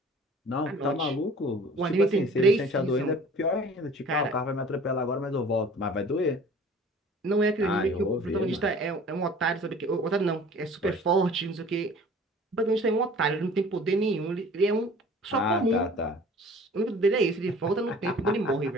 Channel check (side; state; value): both; normal; correlation 0.47